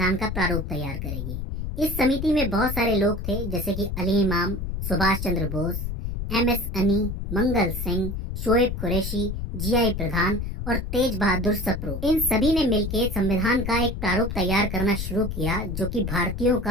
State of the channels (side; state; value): left; noise; rumble, 4 dB below the sound